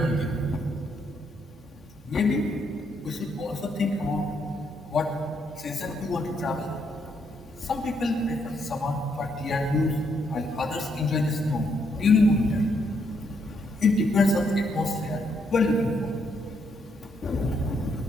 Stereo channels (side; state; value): both; normal; correlation 0.75